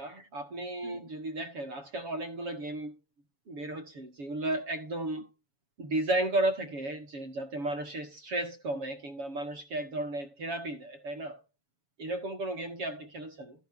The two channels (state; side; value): late; left; 7.2 ms